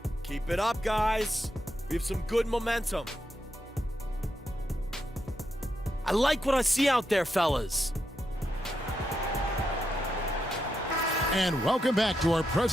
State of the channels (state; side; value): normal; both; correlation 0.84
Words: Keep it up, guys. We have some good momentum. I like what I see out there, fellas. And welcome back to our